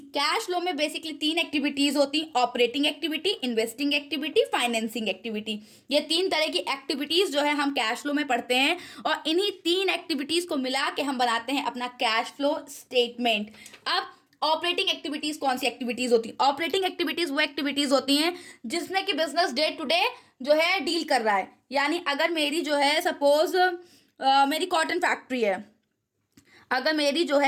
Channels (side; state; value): both; identical; correlation 1.00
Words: कैश फ्लो में बेसिकली 3 एक्टिविटीज होती, operating activity, investing activity, financing activity. ये 3 तरह की एक्टिविटीज जो है हम कैश फ्लो में पढ़ते हैं, और इन्हीं 3 एक्टिविटीज को मिला के हम बनाते हैं अपना कैश फ्लो स्टेटमेंट। अब ऑपरेटिंग एक्टिविटीज कौन सी एक्टिविटीज होती है? ऑपरेटिंग एक्टिविटीज वो एक्टिविटीज होती हैं जिसमें कि बिजनेस डे टू डे जो है डील कर रहा है। यानी अगर मेरी जो है सपोज मेरी कॉटन फैक्ट्री है, अगर मेरी जो